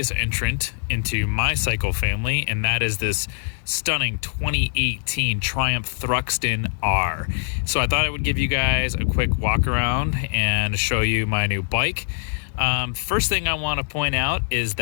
entrant into my cycle family, and that is this stunning 2018 Triumph Thruxton R. So I thought I would give you guys a quick walk around and show you my new bike. First thing I want to point out is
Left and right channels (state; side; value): silent; right; digital silence